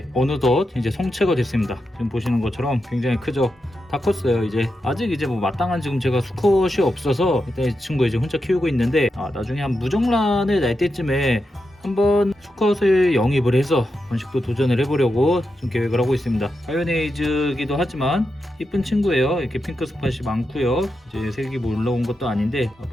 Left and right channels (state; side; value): normal; both; correlation 0.87